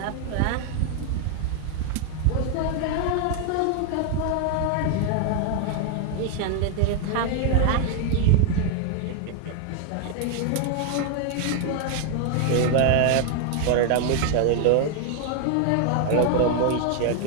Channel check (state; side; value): different; both; correlation 0.00